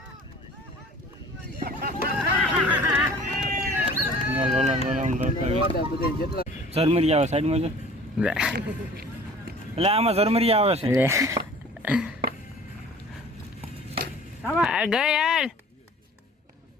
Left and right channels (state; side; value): normal; both; correlation 0.48